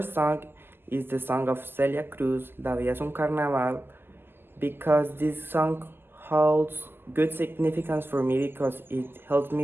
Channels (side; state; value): left; late; 0.10 ms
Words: song is the song of Celia Cruz, La Vida es un Carnaval, because this song holds good significance for me because it helps